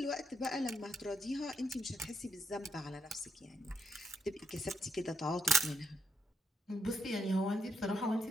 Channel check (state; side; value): normal; both; correlation 0.78